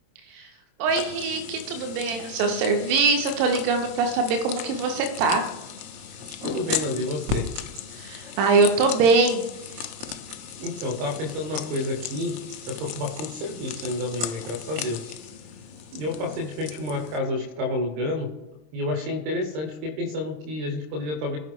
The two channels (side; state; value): left; late; 26 ms